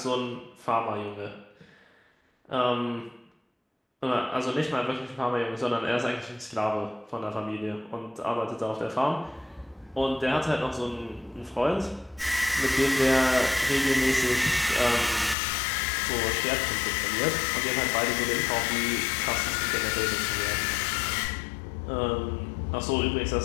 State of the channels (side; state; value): right; drops out; at 15.4 s